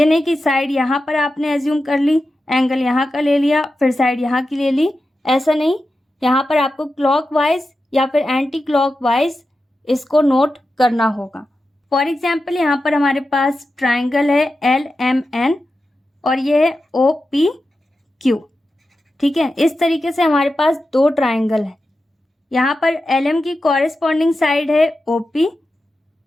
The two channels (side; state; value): both; normal; correlation 0.91